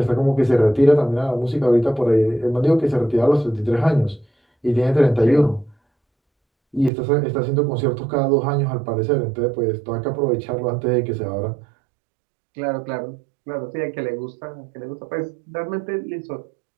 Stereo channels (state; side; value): drops out; left; at 6.9 s